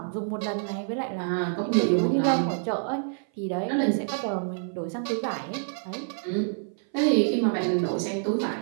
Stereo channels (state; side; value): silent; left; 56 dB below the other